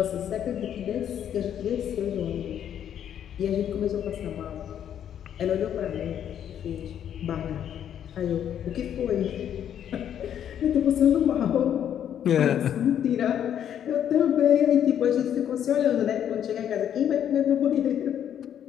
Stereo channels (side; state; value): right; quieter; 9.7 dB